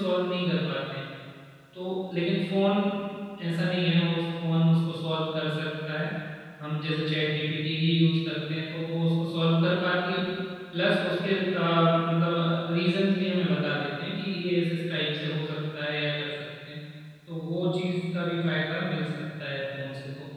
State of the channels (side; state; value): both; identical; correlation 1.00